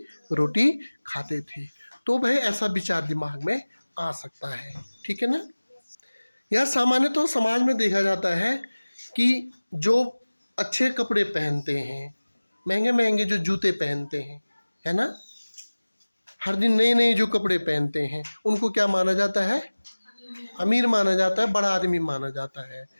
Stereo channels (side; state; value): both; inverted; correlation -1.00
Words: रोटी खाते थे। तो भाई ऐसा विचार दिमाग में आ सकता है, ठीक है ना? यह सामान्य तो समाज में देखा जाता है कि जो अच्छे कपड़े पहनते हैं, महंगे महंगे जो जूते पहनते हैं, है ना, हर दिन नए नए जो कपड़े पहनते हैं, उनको क्या माना जाता है? अमीर माना जाता है, बड़ा आदमी माना जाता है,